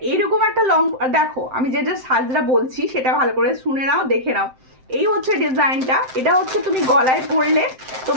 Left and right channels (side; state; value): left; late; 7.7 ms